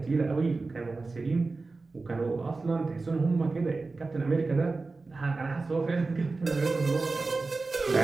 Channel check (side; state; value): left; quieter; 3.7 dB